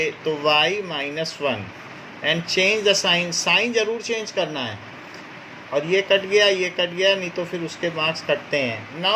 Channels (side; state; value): both; identical; correlation 1.00